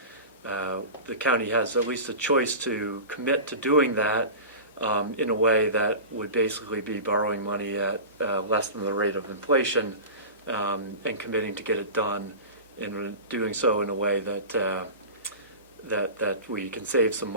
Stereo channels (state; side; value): inverted; both; correlation -0.31